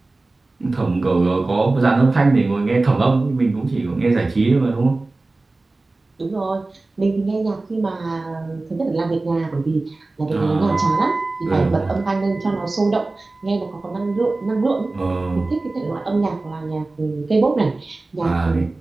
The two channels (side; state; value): left; quieter; 3.2 dB